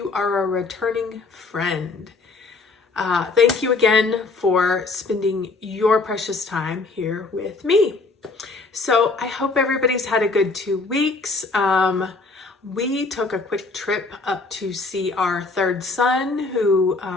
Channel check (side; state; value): right; quieter; 3.8 dB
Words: are a returning friend, thank you again for spending your precious time here with me. So I hope everybody's had a good 2 weeks. We took a quick trip up to see our third son who